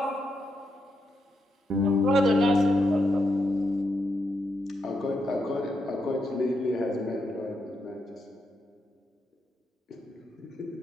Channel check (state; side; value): normal; both; correlation 0.83